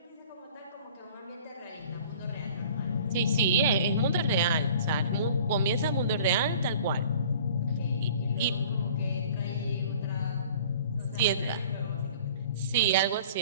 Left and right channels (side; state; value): both; inverted; correlation -0.48